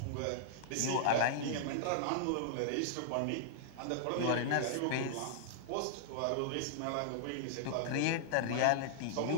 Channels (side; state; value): both; different; correlation -0.01